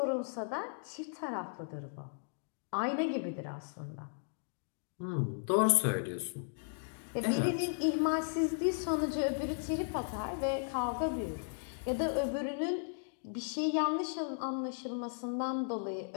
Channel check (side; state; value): right; silent; digital silence